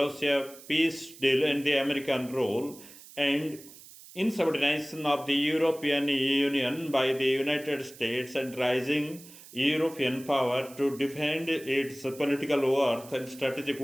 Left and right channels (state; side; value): noise; right; hiss, 19 dB below the sound